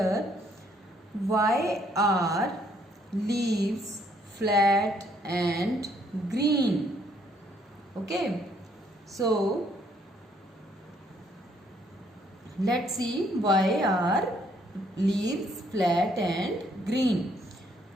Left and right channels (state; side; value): normal; both; correlation 0.67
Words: Why are leaves flat and green? Okay, so see why are leaves flat and green.